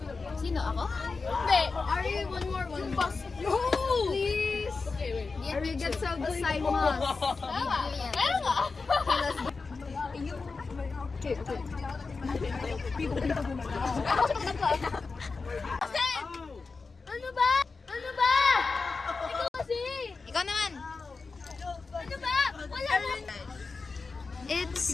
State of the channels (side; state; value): right; quieter; 4.3 dB